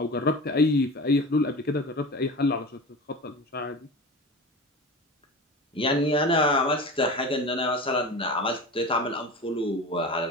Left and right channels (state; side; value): normal; both; correlation 0.31